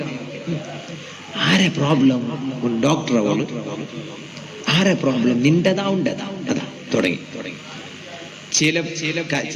ആരെ പ്രോബ്ലം? ഡോക്ടർ അവള്. ആരെ പ്രോബ്ലം? നിന്റെതാ ഉണ്ടതാ. അതാ തുടങ്ങി.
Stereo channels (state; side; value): identical; both; correlation 1.00